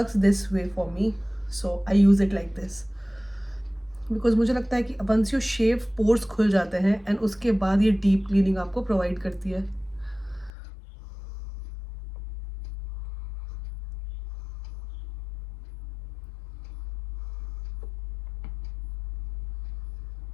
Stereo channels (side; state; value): right; drops out; at 10.5 s